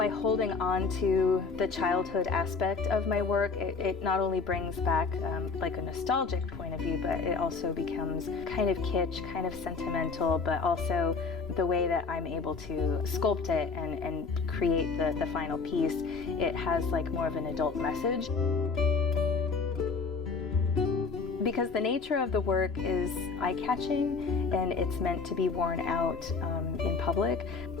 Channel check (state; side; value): quieter; right; 4.6 dB